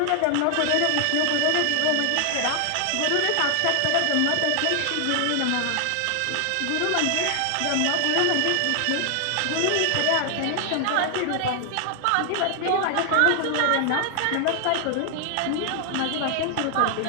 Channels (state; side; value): different; both; correlation 0.00